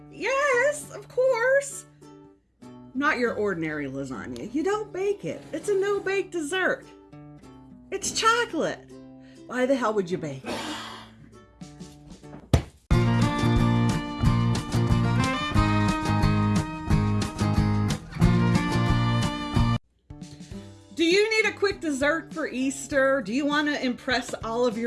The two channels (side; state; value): both; identical; correlation 1.00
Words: Yes, of course. Not your ordinary lasagna. You don't bake it. It's a no-bake dessert. It's chocolate. Why the hell would you bake it? Do you need a quick dessert for Easter? Do you want to impress all of